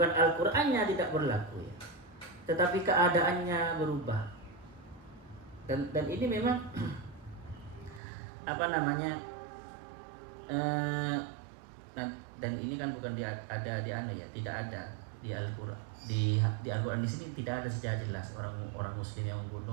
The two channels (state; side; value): drops out; left; at 8.0 s